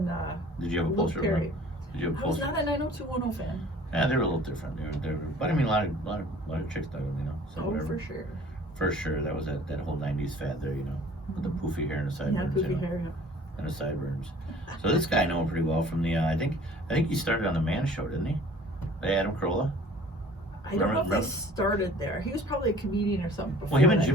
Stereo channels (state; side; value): normal; both; correlation 0.50